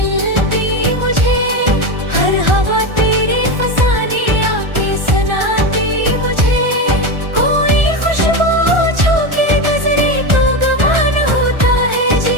मुझे, हर हवा तेरे फसाने आके सुनाती मुझे। कोई खुशबू छू के नजरे तो गवान होता है,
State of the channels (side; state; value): left; late; 1.4 ms